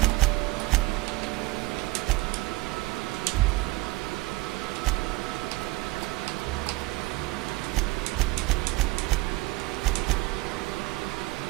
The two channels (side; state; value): left; quieter; 21.0 dB